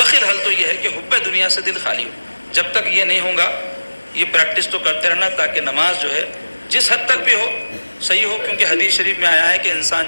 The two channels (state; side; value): inverted; both; correlation -1.00